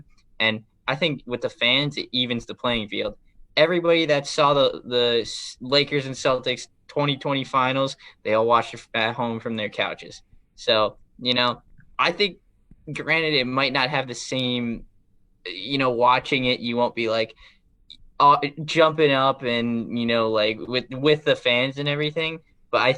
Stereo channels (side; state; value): both; identical; correlation 1.00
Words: And I think with the fans, it evens the playing field. Everybody that saw the Lakers and Celtics 2020 finals, they all watched it at home from their couches. So, I think, granted, it might not have the same, watching it, you won't be like jumping up and, like with the fans and everything, but I